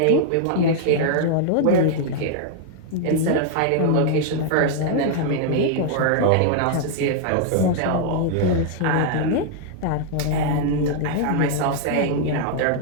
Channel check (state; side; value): different; both; correlation -0.01